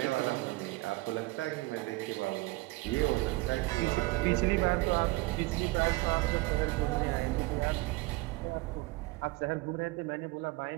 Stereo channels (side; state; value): left; quieter; 22.0 dB